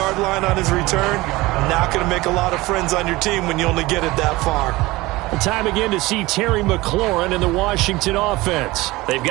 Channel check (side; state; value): left; quieter; 20.2 dB